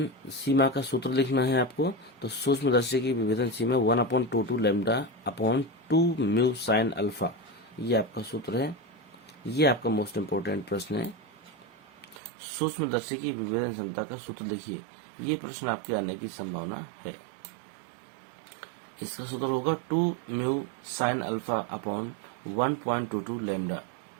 सीमा का सूत्र लिखना है आपको। तो सूक्ष्मदर्शी की विभेदन सीमा 1/22 lambda upon 2 mu sine alpha, ये आपका सूत्र है। ये आपका मोस्ट इम्पोर्टेंट प्रश्न है। सूक्ष्मदर्शी की विभेदन क्षमता का सूत्र लिखिए, ये प्रश्न आपके आने की संभावना है। इसका सूत्र होगा 2 mu sine alpha upon 1.22 lambda.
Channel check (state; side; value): drops out; left; at 12.2 s